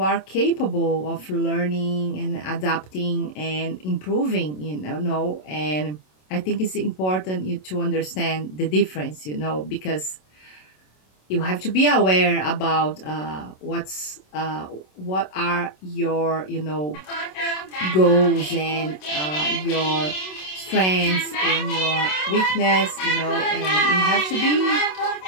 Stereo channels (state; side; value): late; right; 27 ms